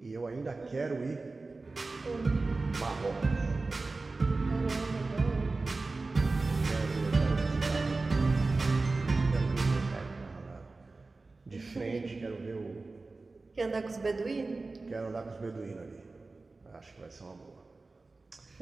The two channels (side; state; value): left; quieter; 3.6 dB